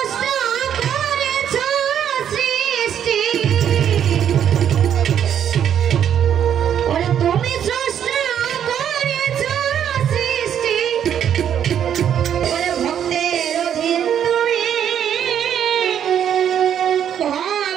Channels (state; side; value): quieter; left; 9.3 dB